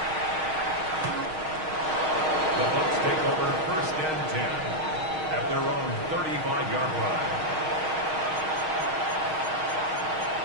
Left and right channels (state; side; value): late; left; 6.4 ms